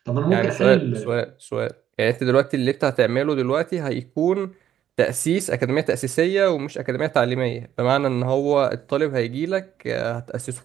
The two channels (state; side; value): quieter; left; 10.6 dB